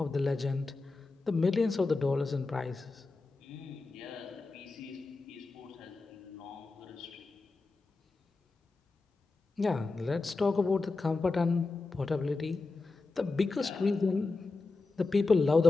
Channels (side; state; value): right; quieter; 3.7 dB